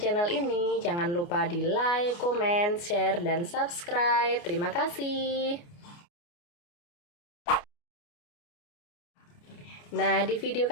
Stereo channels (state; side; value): late; right; 29 ms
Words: ini, jangan lupa di like, komen, share, dan subscribe. Terima kasih. Nah, di video